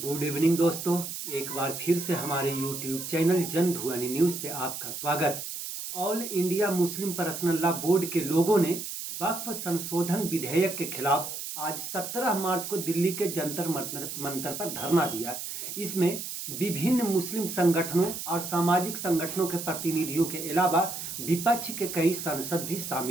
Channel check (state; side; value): noise; right; hiss, 7 dB below the sound